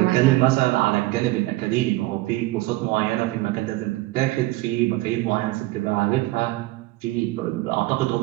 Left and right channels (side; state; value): left; quieter; 19.1 dB